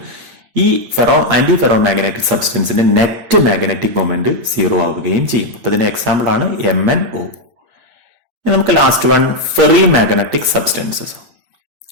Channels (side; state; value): left; late; 8.6 ms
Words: ഈ ആന്റി ഫെറോമാഗ്നറ്റിക് സബ്സ്റ്റൻസിന്റെ നെറ്റ് മാഗ്നറ്റിക് മൊമെന്റ് സീറോ ആവുകയും ചെയ്യും. അപ്പൊ ഇതിന്റെ എക്സാമ്പിൾ ആണ് MnO. നമുക്ക് last one ferrimagnetic substances.